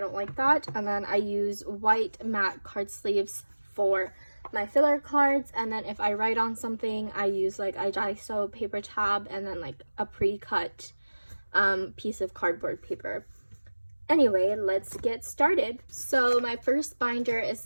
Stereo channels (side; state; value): both; inverted; correlation -1.00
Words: like that. And then I use white matte card sleeves for my filler cards, and then if I write on something, I use like a Daiso paper tab and then like a pre-cut piece of cardboard paper. Anyway, let's get started. So my first binder is